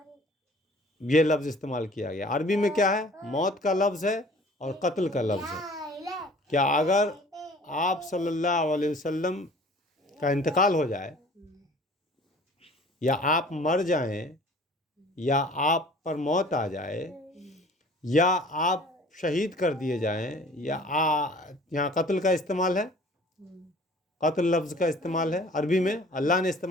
یہ لفظ استعمال کیا گیا۔ عربی میں کیا ہے؟ موت کا لفظ ہے اور قتل کا لفظ ہے۔ کیا اگر آپ صلی اللہ علیہ وسلم کا انتقال ہو جائے، یا آپ مر جائیں، یا آپ پر موت آ جائے، یا آپ شہید کر دیے جائیں، یا یہاں قتل کا استعمال ہے، قتل لفظ کا استعمال ہے عربی میں، اللہ نے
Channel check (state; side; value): normal; both; correlation 0.49